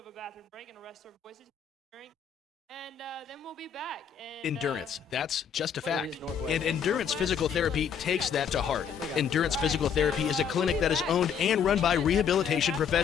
a bathroom break and rest our voices, drink, and then we'll be back. And, Endurance, that's just a fact. Northwest. And Endurance Physical Therapy takes that to heart. Endurance Physical Therapy is a clinic that is owned and run by rehabilitation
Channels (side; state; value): right; quieter; 7.4 dB